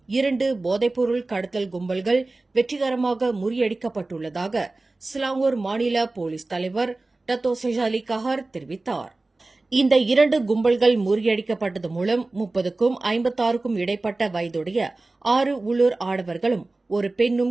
2 போதைப்பொருள் கடத்தல் கும்பல்கள் வெற்றிகரமாக முறியடிக்கப்பட்டுள்ளதாக சிலாங்கூர் மாநில போலீஸ் தலைவர் டத்தோ செஜாலி கஹார் தெரிவித்தார். இந்த 2 கும்பல்கள் முறியடிக்கப்பட்டது மூலம் 30க்கும் 56க்கும் இடைப்பட்ட வயதுடைய 6 உள்ளூர் ஆடவர்களும் ஒரு பெண்ணும்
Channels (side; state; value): left; quieter; 3.2 dB